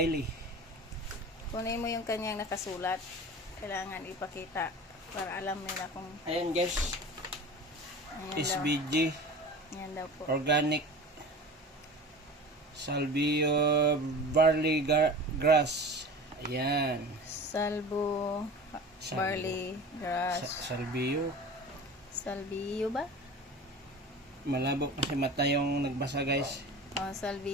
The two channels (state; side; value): normal; both; correlation 0.36